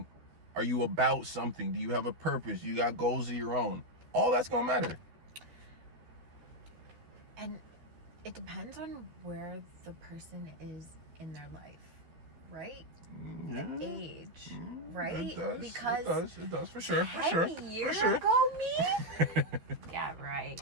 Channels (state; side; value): late; left; 12 ms